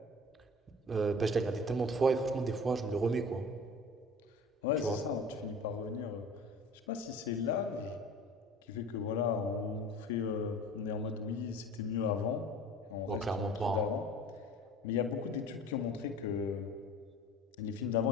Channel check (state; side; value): normal; both; correlation 0.42